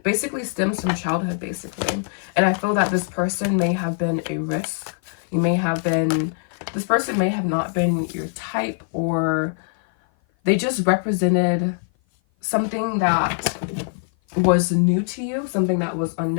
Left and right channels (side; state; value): right; silent; 56 dB below the other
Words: basically stems from childhood, basically. And I feel that this person may have been a risk. This person may have not been your type, or they just represented something that was new to you, something that was